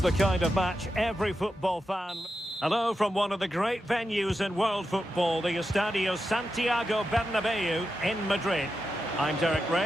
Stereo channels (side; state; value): both; normal; correlation 0.89